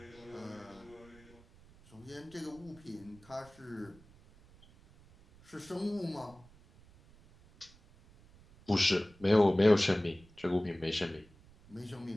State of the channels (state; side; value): noise; right; rumble, 25 dB below the sound